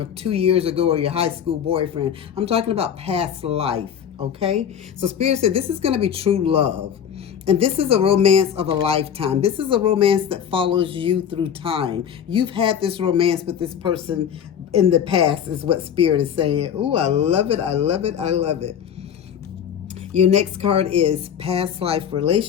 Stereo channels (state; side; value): quieter; right; 8.6 dB